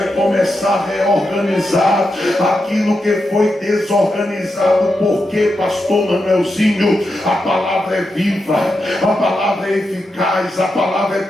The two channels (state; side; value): normal; both; correlation 0.87